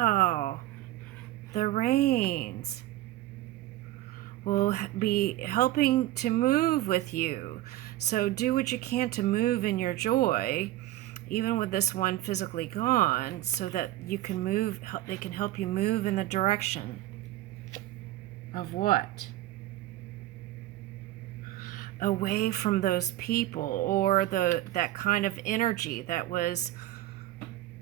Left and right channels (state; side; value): quieter; left; 15.2 dB